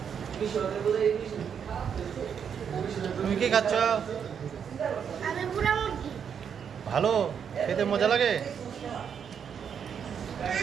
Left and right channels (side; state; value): left; quieter; 7.5 dB